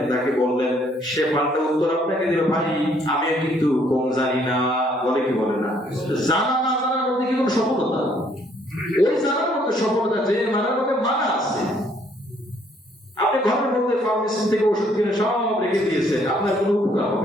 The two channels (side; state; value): both; normal; correlation 0.65